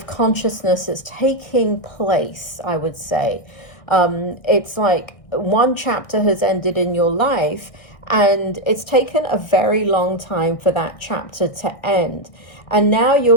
consciousness that's taking place, I would say. It's like one chapter has ended in your life, and it's taken a very long time for that chapter to end. And now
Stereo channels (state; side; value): late; right; 1.6 ms